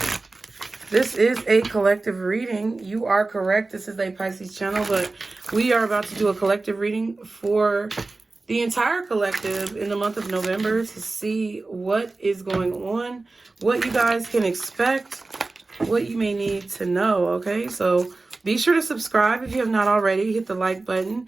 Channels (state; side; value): quieter; left; 3.4 dB